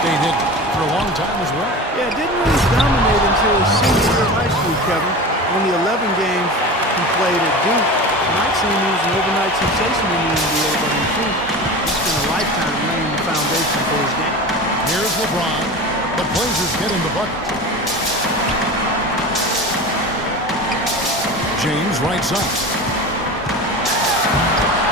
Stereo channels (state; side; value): normal; both; correlation 0.31